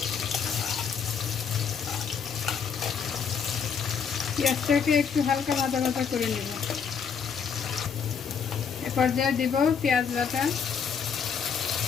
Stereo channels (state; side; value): quieter; right; 6.7 dB